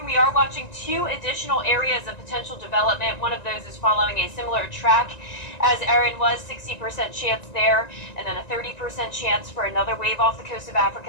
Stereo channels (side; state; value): right; late; 1.9 ms